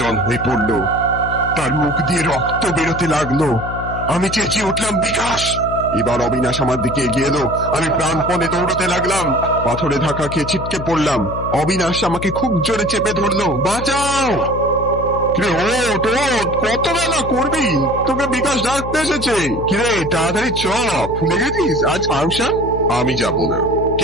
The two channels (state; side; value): noise; left; hum, 8 dB below the sound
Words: হয়ে পড়ল, তার মুখ দিয়ে রক্ত বেরোতে লাগলো। আমি চেঁচিয়ে উঠলাম, বিকাশ! এবার অবিনাশ আমার দিকে এগিয়ে এলো। আমি প্রাণপণে দৌড়তে লাগলাম। পাথরে ধাক্কা খেয়ে ছিটকে পড়লাম। অবিনাশ আমাকে খুব জোরে চেপে ধরলো। বাঁচাও! কত বেলা করবি? তোকে বিকাশ ডাকতে এসেছে। কিরে, তাড়াতাড়ি চ, ভুলে গেছিস আজ ফাংশন? আমি যাব না।